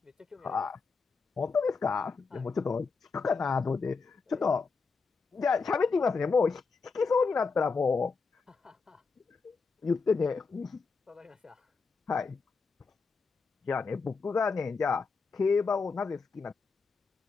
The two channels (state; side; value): quieter; right; 4.7 dB